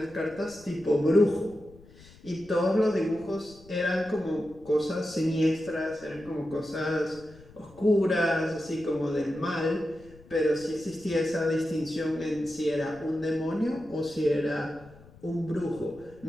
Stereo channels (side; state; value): left; noise; rumble, 23 dB below the sound